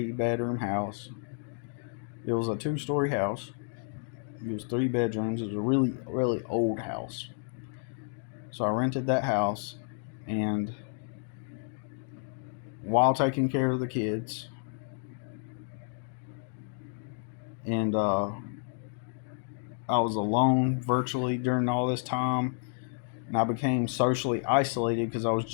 house. It was a 2-story house. It was 3 bedrooms. It was a really, really old house. So I rented that house, and while taking care of the kids, and I was alone virtually during all this time, and I became socially isolated because I was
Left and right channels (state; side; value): silent; right; 57 dB below the other